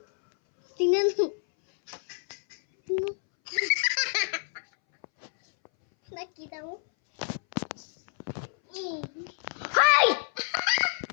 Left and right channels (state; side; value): silent; right; 59 dB below the other